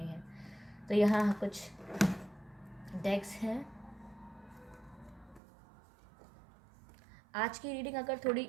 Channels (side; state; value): left; drops out; at 5.4 s